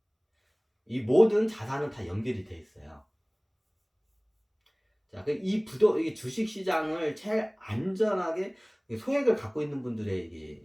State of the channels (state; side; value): identical; both; correlation 1.00